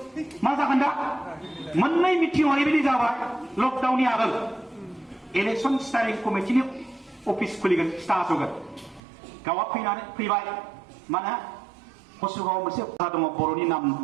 मा जागोन दा मोननै मिटिं ओरैबायदि जाबाय लकडाउननि आगोल इलेक्सन स्टारिं कमिटिनि अफिस खुलिगोन खिथा होगोन गावआ फैबाय माने कसुगावआव मोनसे बाजार दङ बर'नि नाम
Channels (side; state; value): left; drops out; at 9.0 s